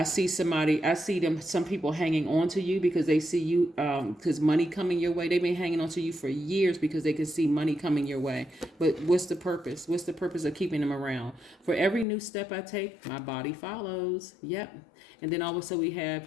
see some people hanging on to you because they see you, because money coming your way. They've been hanging on to you for years because they can see money coming your way. But what's the purpose? What's the purpose of keeping them around? For every new step I take, my body follows. Yep. And then also we have,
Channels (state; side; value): drops out; right; at 12.1 s